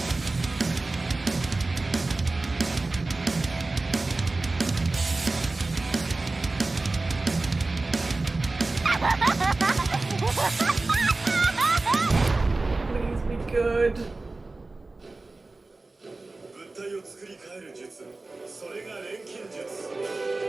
Please be good. 物体を作り変える術、それが錬金術。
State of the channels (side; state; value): left; quieter; 3.3 dB